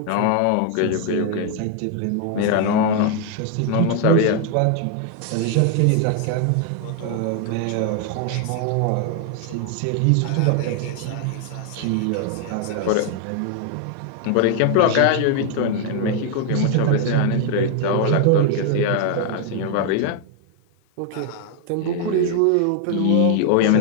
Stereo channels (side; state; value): both; different; correlation 0.00